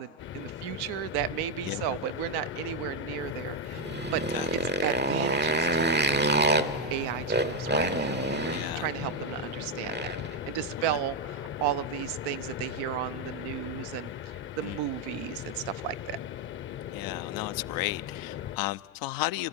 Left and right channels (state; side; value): normal; both; correlation 0.04